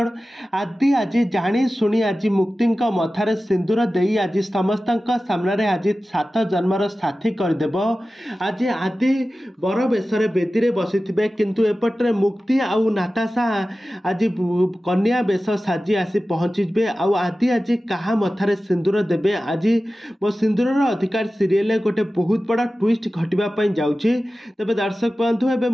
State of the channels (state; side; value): normal; both; correlation 0.95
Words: आदि आज जाणी शुणी आज मुक्ति मथार सिंदूर दे आज समस्त सामने आज 7 जन्मर साथी करदेव। आज आदि बर बेशरे बेदी बसी किंतु एपटे मुक्ति आउ नाताशा आज कन्या बेश साजी आसी पहुँचे आदि आज क्या मथार सिंदूर देवे। आज मो सिंदूर अधिकार सीरियल गोटे बहुत बड़ा ट्विस्ट घटवाई जाऊँगी। तेज दर्शक बंधु एवं